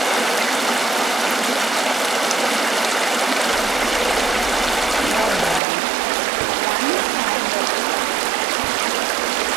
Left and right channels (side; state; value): left; drops out; at 5.6 s